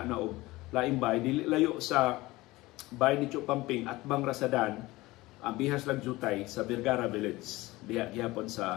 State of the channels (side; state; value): right; quieter; 19.8 dB